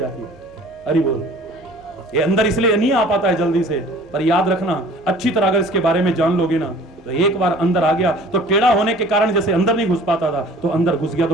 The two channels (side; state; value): left; noise; hum, 26 dB below the sound